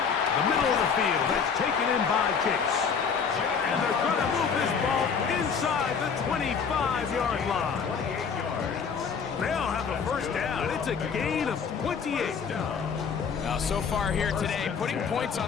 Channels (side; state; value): right; quieter; 6.2 dB